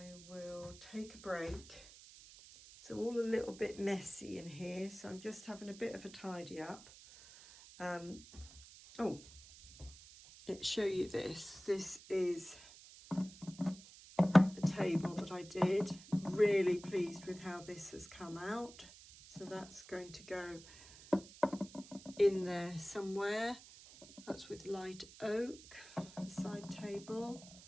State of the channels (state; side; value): noise; right; hiss, 18 dB below the sound